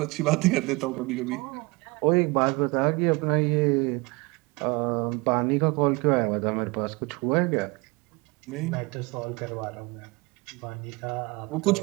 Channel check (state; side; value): quieter; left; 25.9 dB